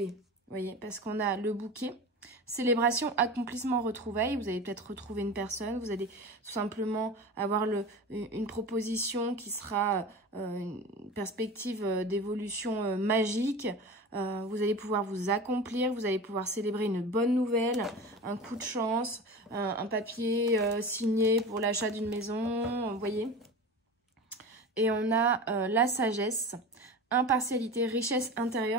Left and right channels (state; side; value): normal; both; correlation 0.31